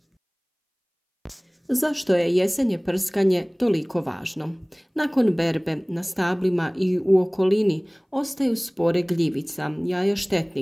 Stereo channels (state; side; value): identical; both; correlation 1.00